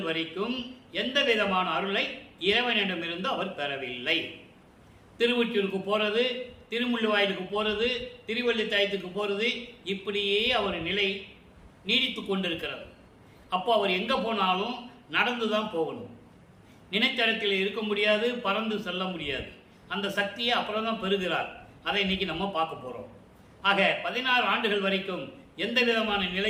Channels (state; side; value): identical; both; correlation 1.00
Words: வரைக்கும் எந்த விதமான அருளை இறைவனிடமிருந்து அவர் பெறவில்லை. திருவொற்றியூருக்கு போறது, திருமுள்ளுவாயிலுக்கு போறது, திருவள்ளித்தாயத்துக்கு போறது, இப்படியே அவர் நிலை நீடித்து கொண்டிருக்கிறது. அப்போ அவர் எங்க போனாலும் நடந்து தான் போகணும். நினைத்த இடத்தில் இருக்க முடியாது, பறந்து செல்ல முடியாது. அந்த சக்தியை அப்புறம் தான் பெறுகிறார். அதை இன்னைக்கு நம்ம பார்க்க போறோம். ஆக 16 ஆண்டுகள் வரைக்கும் எந்த விதமான